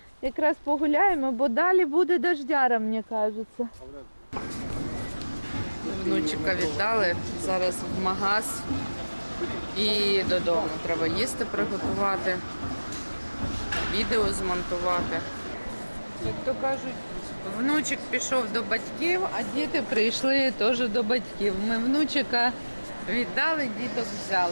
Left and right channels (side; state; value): both; inverted; correlation -1.00